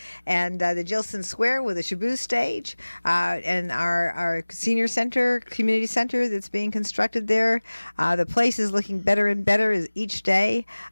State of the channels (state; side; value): inverted; both; correlation -1.00